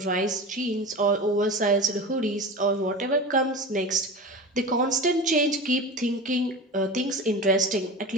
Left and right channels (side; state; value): both; normal; correlation 0.30